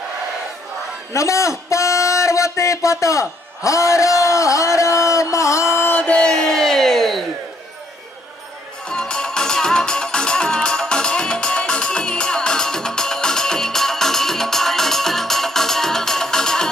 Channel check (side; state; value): both; normal; correlation 0.69